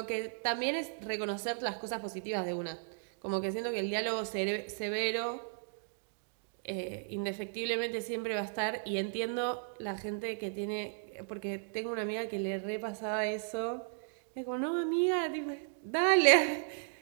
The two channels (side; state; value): left; silent; digital silence